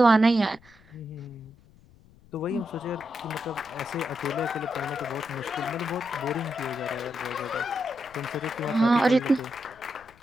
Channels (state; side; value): noise; left; rumble, 27 dB below the sound